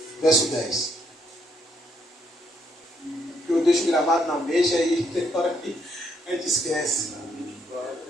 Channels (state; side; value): normal; both; correlation 0.73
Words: verso 10. Eu deixo gravado na mente aí, tem hora que a gente esquece.